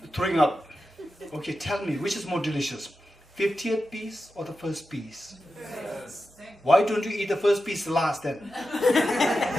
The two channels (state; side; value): normal; both; correlation 0.90